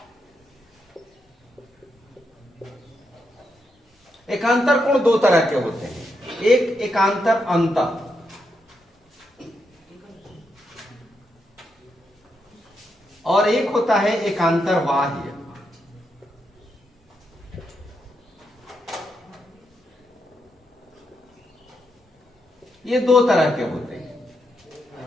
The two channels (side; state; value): both; normal; correlation 0.82